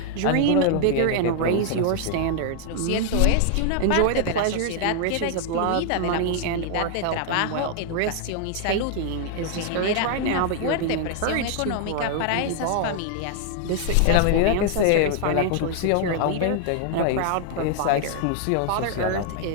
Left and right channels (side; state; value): both; different; correlation 0.00